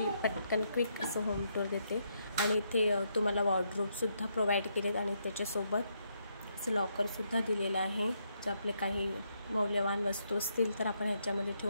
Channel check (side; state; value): both; inverted; correlation -0.77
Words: पटकन क्विक असं होम टूर देते आणि इथे तुम्हाला वॉर्डरोबसुद्धा प्रोव्हाइड केलेत आणि त्याच्यासोबत असं लॉकरसुद्धा दिलेलं आहे. जर आपले काही मौल्यवान वस्तू असतील तर आपण ह्याच्यामध्ये